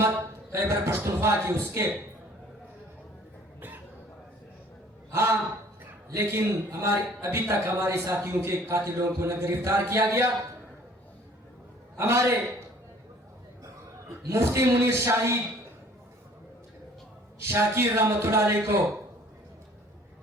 खैबर पख्तूनख्वा की उसके। हाँ, लेकिन अभी तक हमारे साथियों के कातिलों को न गिरफ्तार किया गया। हमारे मुफ्ती मुनीर शाही शाकिर रहमतुल्लाह अलैह को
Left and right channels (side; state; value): both; normal; correlation 0.54